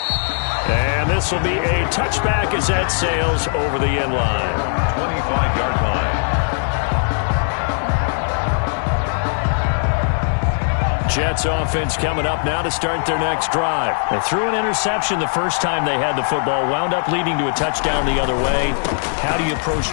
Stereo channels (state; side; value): silent; right; digital silence